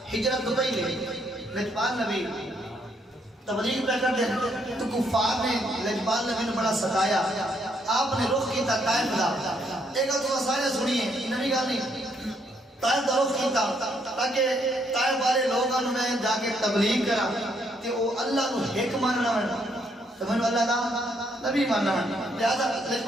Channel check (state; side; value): normal; both; correlation 0.72